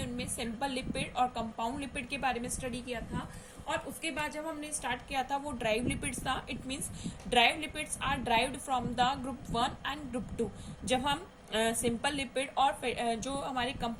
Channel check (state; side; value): identical; both; correlation 1.00